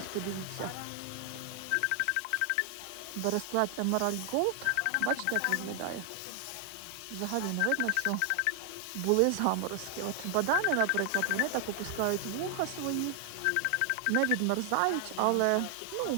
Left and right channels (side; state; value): both; different; correlation 0.00